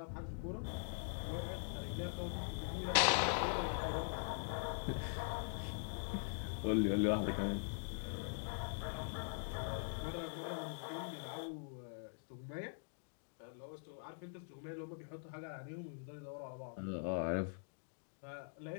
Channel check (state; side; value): silent; right; digital silence